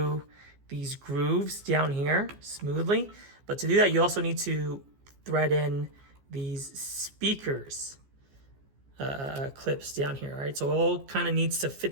these grooves down here smoothly. But to do that, you also need to thread in these speakers clips down here, all right? So it all kind of needs to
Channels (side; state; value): left; late; 15 ms